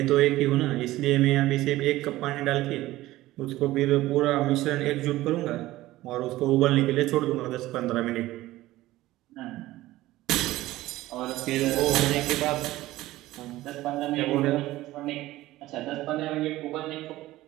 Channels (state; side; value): quieter; left; 16.7 dB